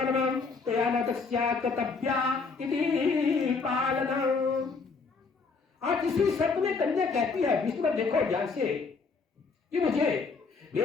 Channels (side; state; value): right; quieter; 4.6 dB